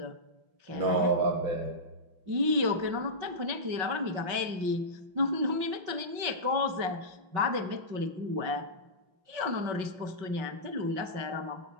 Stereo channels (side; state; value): left; late; 5.3 ms